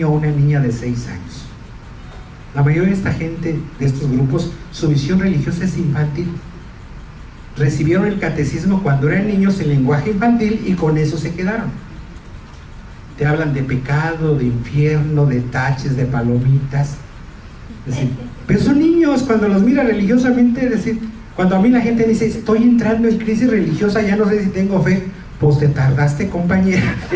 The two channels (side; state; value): both; identical; correlation 1.00